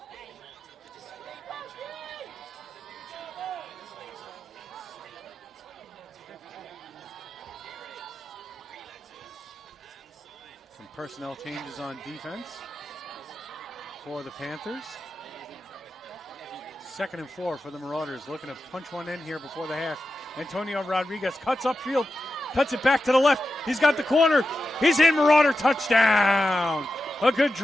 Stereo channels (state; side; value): normal; both; correlation 0.91